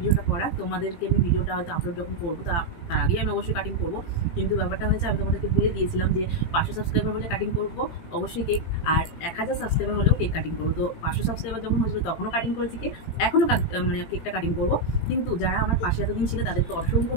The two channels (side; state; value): right; late; 18 ms